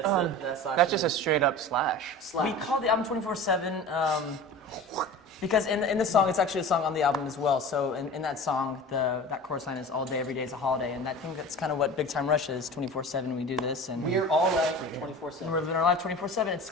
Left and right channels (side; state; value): both; normal; correlation 0.36